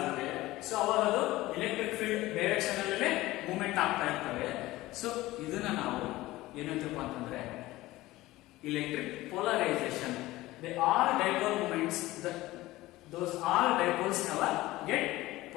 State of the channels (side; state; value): right; quieter; 17.9 dB